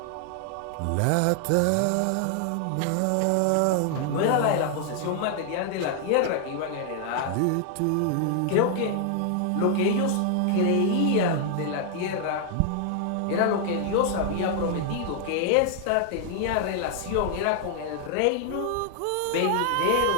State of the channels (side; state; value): both; different; correlation 0.00